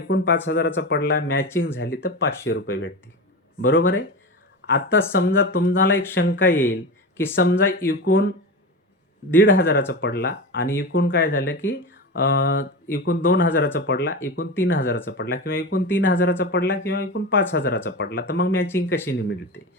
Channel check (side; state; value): both; normal; correlation 0.24